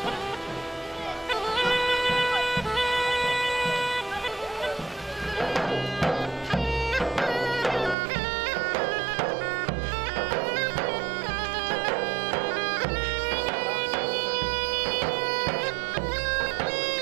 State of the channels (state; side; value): drops out; left; at 8.0 s